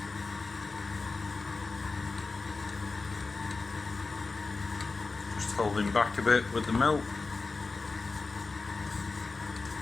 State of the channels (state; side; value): quieter; right; 3.9 dB